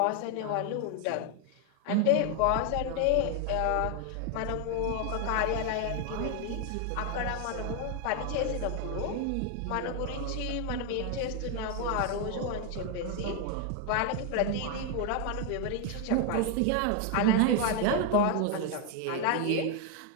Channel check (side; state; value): both; different; correlation 0.01